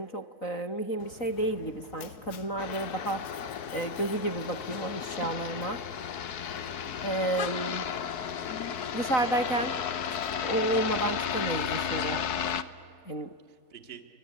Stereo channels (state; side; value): late; right; 4.7 ms